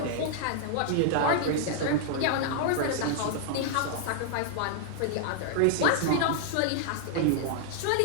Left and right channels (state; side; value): different; both; correlation -0.01